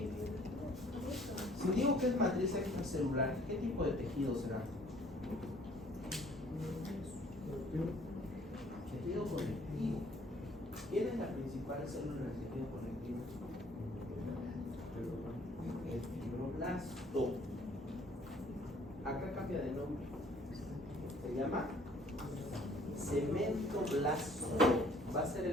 Si digo que es matriz extracelular, ¿qué tipo de tejido será? Tejido conectivo. ¿Quién es la principal célula del tejido conectivo? El fibroblasto. Acá cambia de nombre. Se llama cementoblasto. Va a ser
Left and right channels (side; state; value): both; normal; correlation 0.58